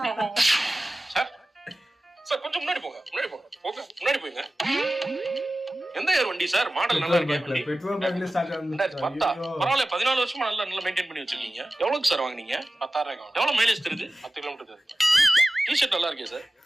சார் சார் கொஞ்சம் முன்னாடி போங்க. முன்னாடி போங்க. எந்த இயர் வண்டி சார்? மாடல் நல்லா இருக்கு. வண்டி பெட்ரோல் பங்க்ல ஸ்டார்ட் 2010. பரவாயில்ல 14 வருஷமா நல்லா மெயின்டைன் பண்ணி வச்சிருக்கீங்க. எவ்வளவுக்கு சார் வாங்குனீங்க? 10,000. எவ்வளவு மைலேஜ் தருது? 10 கிலோமீட்டர் தருது. டிஷர்ட் நல்லா இருக்கே சார்.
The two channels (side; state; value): both; normal; correlation 0.96